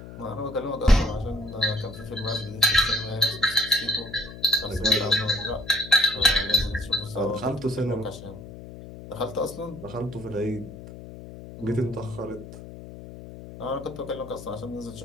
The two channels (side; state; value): left; noise; hum, 14 dB below the sound